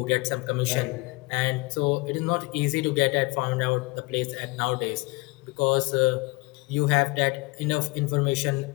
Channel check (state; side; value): quieter; right; 24.8 dB